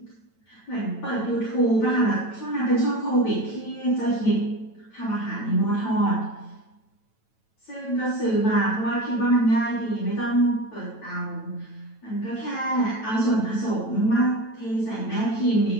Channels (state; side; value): late; right; 9.0 ms